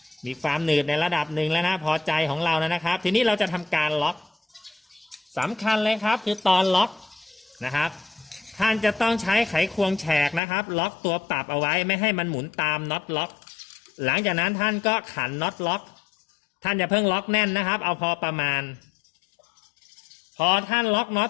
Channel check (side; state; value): right; drops out; at 10.4 s